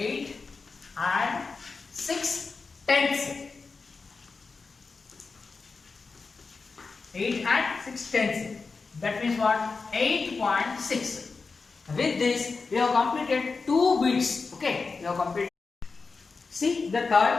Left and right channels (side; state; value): right; quieter; 4.4 dB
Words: and 6 tenths. 8 and 6 tenths. That means what? 8.6. With this, we have completed 2 bits. Okay, we have completed. See the